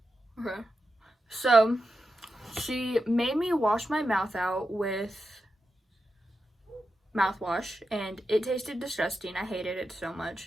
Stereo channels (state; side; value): normal; both; correlation 0.89